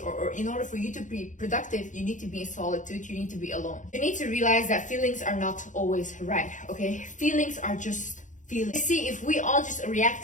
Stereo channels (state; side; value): late; right; 0.36 ms